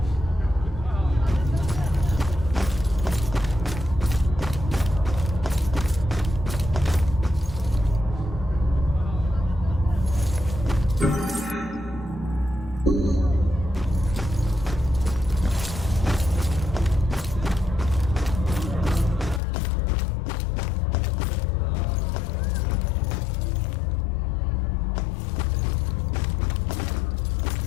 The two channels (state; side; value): drops out; right; at 19.4 s